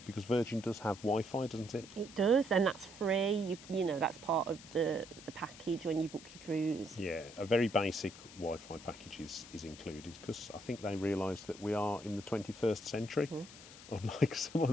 because Virgin does have Wi-Fi, doesn't it? It does, and that's free. You know, that's part of the package when you book your cruise. Yeah, a very basic Wi-Fi package is included, because I think they realise that we are in the 21st century, unlike some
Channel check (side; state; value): left; noise; hiss, 17 dB below the sound